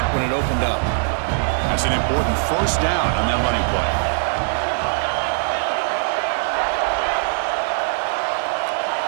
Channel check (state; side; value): silent; left; 63 dB below the other